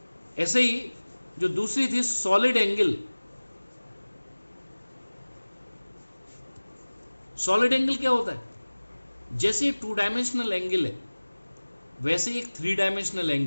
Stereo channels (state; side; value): inverted; both; correlation -1.00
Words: ऐसे ही जो दूसरी थी सॉलिड एंगल। सॉलिड एंगल क्या होता है? जैसे एक 2 डायमेंशनल एंगल है वैसे एक 3 डायमेंशनल